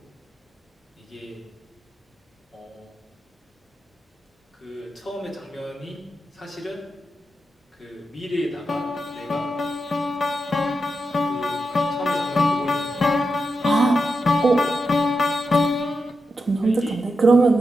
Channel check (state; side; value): normal; both; correlation 0.87